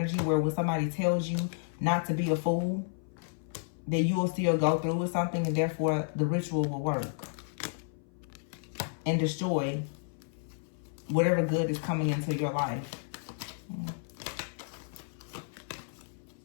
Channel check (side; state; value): right; silent; 56 dB below the other